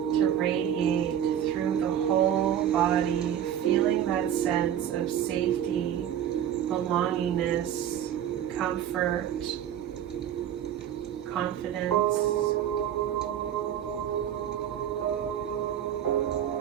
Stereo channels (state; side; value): quieter; left; 10.1 dB